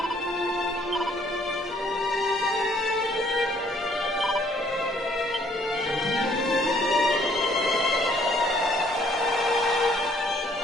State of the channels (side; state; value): both; normal; correlation 0.63